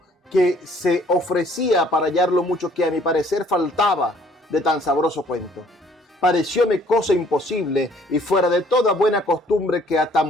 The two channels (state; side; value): normal; both; correlation 0.60